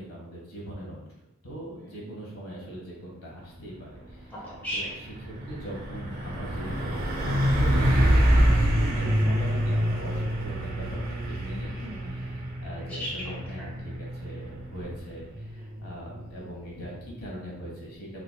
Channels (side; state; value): both; normal; correlation 0.86